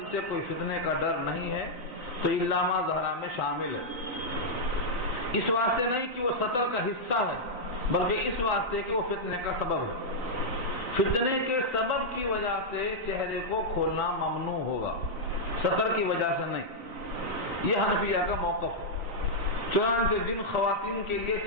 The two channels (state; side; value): late; right; 4.1 ms